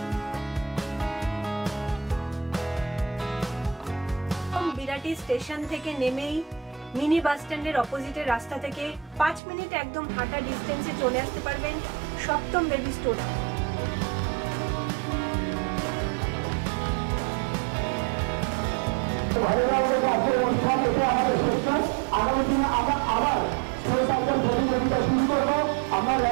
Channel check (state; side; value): drops out; left; at 9.4 s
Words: বিরাটি স্টেশন থেকে নেমেই মিনি বাস স্ট্যান্ডের অপোজিটের রাস্তা থেকে 5 মিনিট একদম হাঁটা ডিস্টেন্সে চলে আসতে পারবেন সপ্তম বেবি স্টোর। ভালো লাগছে আজকের অনুষ্ঠান, এটা আমাদের শেষ। আগামী দিনে আমরা আবার স্লো সাইকেল প্রতিযোগিতা শুরু করবো, আমরা